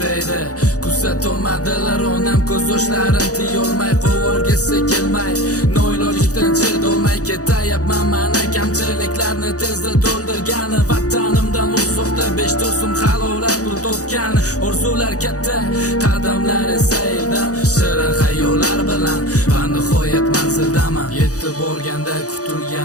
kuzatolmadilar onam ko'z yoshlarim tiyolmay qo'vorgisi kelmay noilojlikdan chidolmay ketayapman mana kamchiliklarni tezda to'ldirgani vatanimdan uzoqda 5 do'stim halovat pul topgani orzular katta qadamlar esa eldan shirin xayollar bilan va nihoyat manzildaman yetib borganda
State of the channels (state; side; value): late; right; 0.67 ms